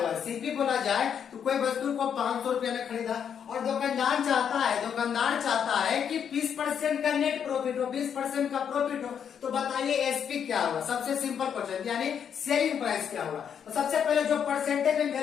है। सीपी बोला जाए तो कोई वस्तु को 500 रुपए में खरीदा और दुकानदार चाहता है कि 20% का नेट प्रॉफिट हो, 20% का प्रॉफिट हो। तो बताइए एसपी क्या होगा? सबसे सिंपल क्वेश्चन, यानी सेलिंग प्राइस क्या होगा? तो सबसे पहले जो परसेंटेज में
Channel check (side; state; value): right; quieter; 8.0 dB